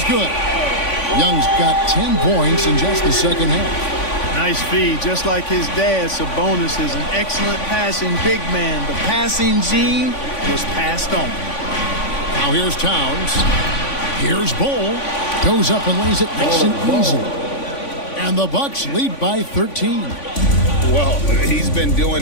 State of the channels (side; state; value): right; late; 3.5 ms